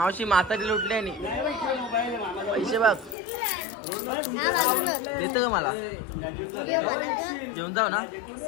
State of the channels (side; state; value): right; drops out; at 3.2 s